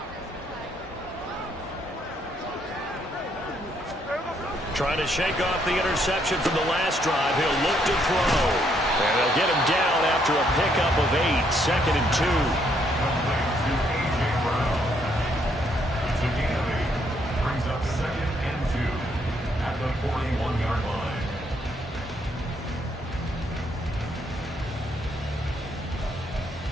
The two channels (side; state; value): both; normal; correlation 0.71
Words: Trying to shake off the interception from the last drive. He'll look to throw. And they'll get him down after a pickup of 8. 2nd and 2. It's a gain of 8. Brings up 2nd and 2.